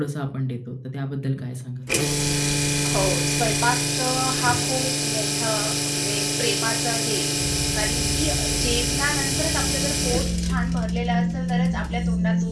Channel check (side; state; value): both; identical; correlation 1.00